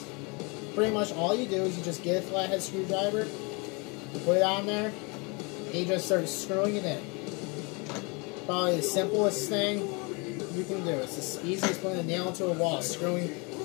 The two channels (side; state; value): right; quieter; 30.2 dB